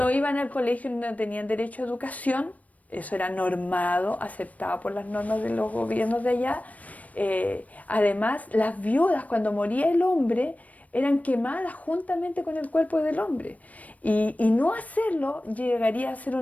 iban al colegio, no tenían derecho a educación. Eso era normado, aceptado por las normas de los gobiernos de allá. Además, las viudas, cuando moría el hombre, eran quemadas juntamente con el cuerpo del hombre. Y no hacerlo llegaría a ser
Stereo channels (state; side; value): late; right; 0.070 ms